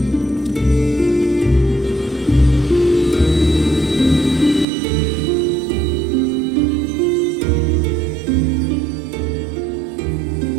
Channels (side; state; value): left; drops out; at 4.7 s